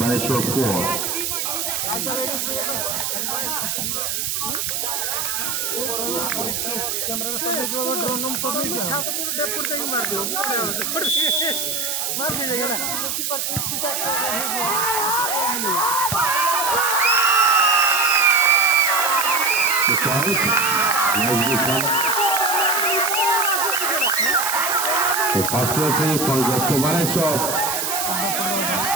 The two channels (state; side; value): noise; right; hiss, 1 dB below the sound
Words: 4. The first referee for West Baleshwar